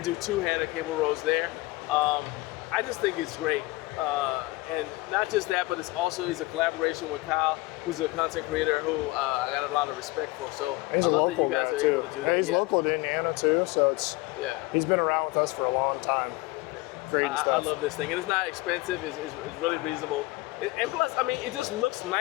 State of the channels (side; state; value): right; quieter; 21.1 dB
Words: do two-handed cable rows there. I just think it's great. And not just that, but it's a collaboration with Kyle, who's a content creator who I got a lot of respect for. So I love that you guys are able to do that. He's local to Indiana too, so he's been around with us for a long time. Great stuff. I love this thing, and it's not expensive. It's really reasonable. And plus, I mean, it just looks